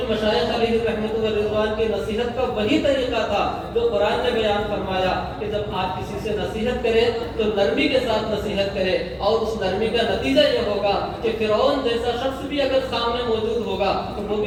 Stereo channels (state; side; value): identical; both; correlation 1.00